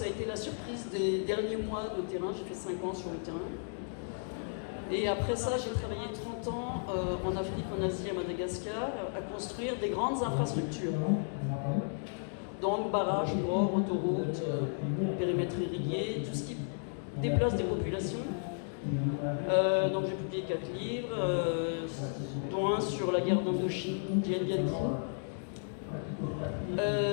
a été la surprise des derniers mois de terrain. J'ai fait 5 ans sur le terrain. Et après ça, j'ai travaillé 30 ans en Afrique, en Asie, à Madagascar, à construire des grandes infrastructures. Donc barrages, ports, autoroutes, périmètres irrigués, tout ce qui déplace des populations. Donc j'ai publié 4 livres, dont un sur la guerre d'Indochine, Dien Bien Phu.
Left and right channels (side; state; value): right; silent; digital silence